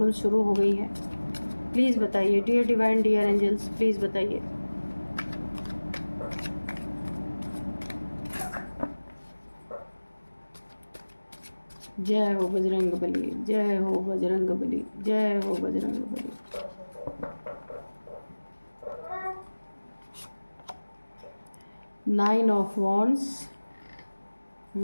शुरू हो गई हैं। प्लीज़ बताइए dear divine, dear angels, please बताइए। जय हो बजरंग बली, जय हो बजरंग बली, जय हो Bajrang Bali. Nine of wands,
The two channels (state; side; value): inverted; both; correlation -1.00